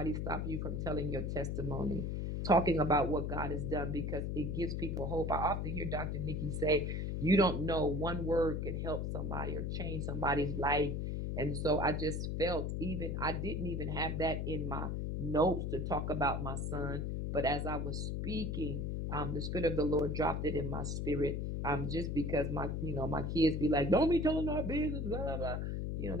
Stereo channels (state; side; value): noise; left; hum, 1 dB below the sound